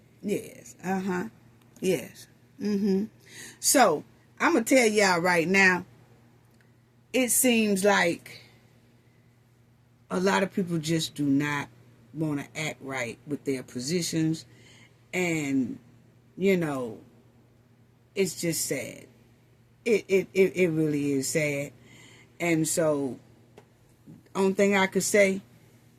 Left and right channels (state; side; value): identical; both; correlation 1.00